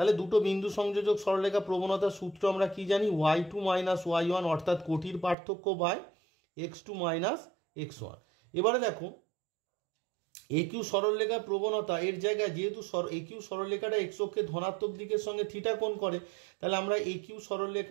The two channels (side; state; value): left; drops out; at 5.4 s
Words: দুটো বিন্দু সংযোজক সরলরেখা প্রবণতার সূত্র আমরা কি জানি? y2 মাইনাস y1, অর্থাৎ কোটির পার্থক্য বাই x2 মাইনাস x1। এবারে দেখো এ কিউ সরলরেখার প্রবণতা এর জায়গায় যেহেতু এ কিউ সরলরেখাটা এক্স অক্ষের ধনাত্মক দিকের সঙ্গে থিটা কোণ করে, তাহলে আমরা এ কিউ